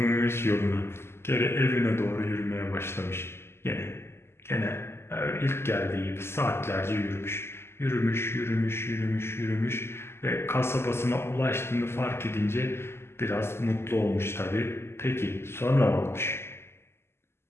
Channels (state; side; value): late; right; 0.12 ms